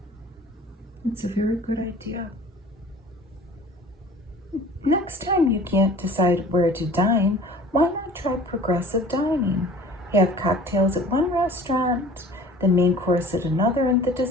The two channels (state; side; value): normal; both; correlation 0.46